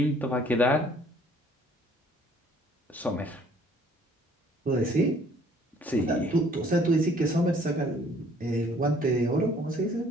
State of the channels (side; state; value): both; normal; correlation 0.58